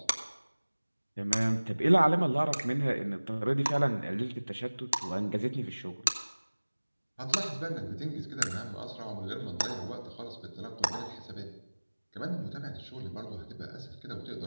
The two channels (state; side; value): inverted; both; correlation -1.00